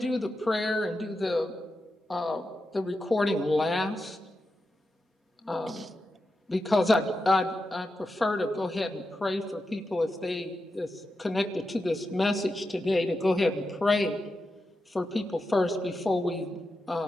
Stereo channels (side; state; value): both; normal; correlation 0.89